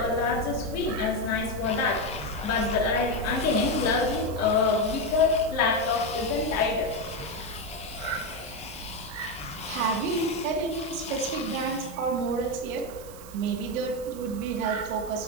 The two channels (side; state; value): right; noise; hiss, 18 dB below the sound